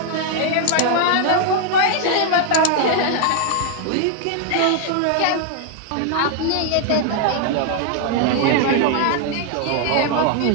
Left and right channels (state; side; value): different; both; correlation 0.00